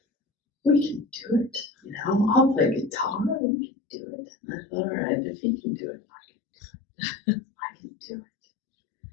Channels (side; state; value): right; drops out; at 3.4 s